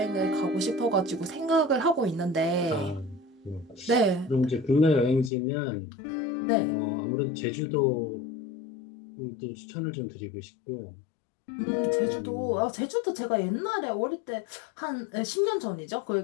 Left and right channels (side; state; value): right; drops out; at 5.3 s